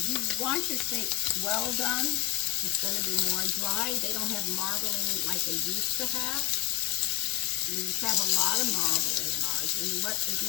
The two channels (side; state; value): right; quieter; 16.8 dB